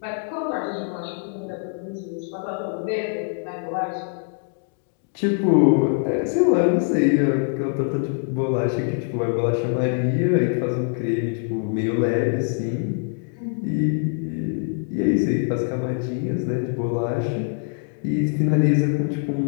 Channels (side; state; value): right; silent; 57 dB below the other